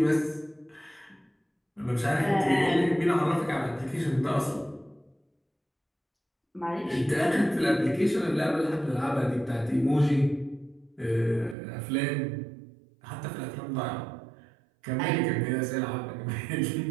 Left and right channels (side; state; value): left; drops out; at 11.6 s